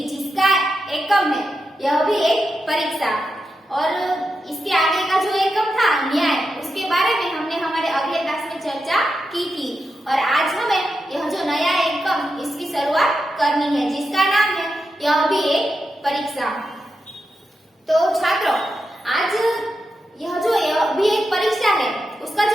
जिसका एकम है यह भी एक परीक्षा, और इसके आगे का जो एकम था न्याय, उसके बारे में हमने हमारे अगले क्लास में चर्चा की थी। और आज हमें यह जो नया एकम इसकी शुरुआत करनी है, जिसका नाम है यह भी एक परीक्षा। तो छात्रों, आज यह भी एक परीक्षा है, उसका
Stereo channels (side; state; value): both; normal; correlation 0.87